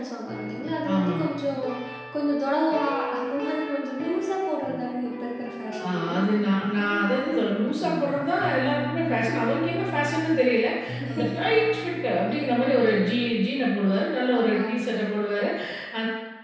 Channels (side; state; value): both; identical; correlation 1.00